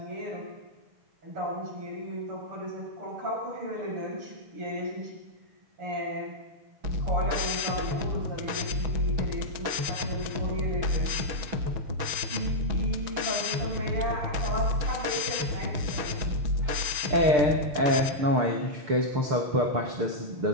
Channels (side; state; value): left; late; 6.2 ms